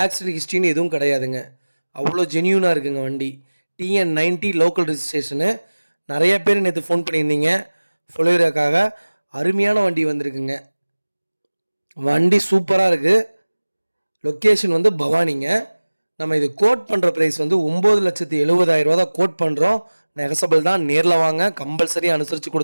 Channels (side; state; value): both; inverted; correlation -1.00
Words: ஆக்சிடென்ட் ஹிஸ்ட்ரின்னு எதுவும் கிடையாதுங்க. அவ்வளோ ஜென்யூனாக இருக்குங்க வண்டி. TN90 local registration. நிறைய பேர் நேற்று ஃபோன் பண்ணியிருந்தீங்க ஃபொலேரோக்காக. அருமையான வண்டி வந்திருக்குங்க. வண்டி சூப்பராக இருக்குது. லொக்கேஷன் வந்து பவானிங்க. நம்ம இது கோட் பண்ணுற ப்ரைஸ் வந்து 9,70,000 தான் கோட் பண்ணுறோம். நெகசபிள் தான். நேரில் வாங்க, கம்பல்சரி அனுசரித்து